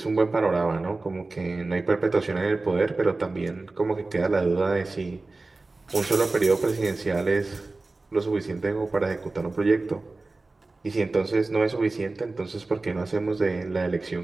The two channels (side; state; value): left; quieter; 3.4 dB